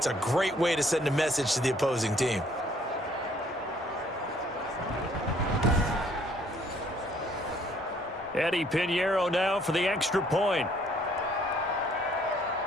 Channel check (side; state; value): both; normal; correlation 0.62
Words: a great way to send a message to the opposing team. Eddie Pinheiro now for the extra point.